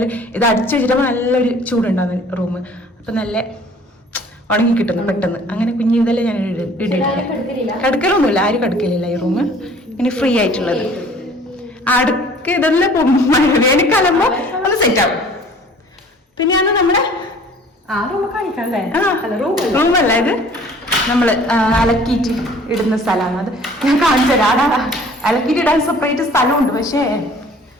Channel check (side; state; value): both; normal; correlation 0.51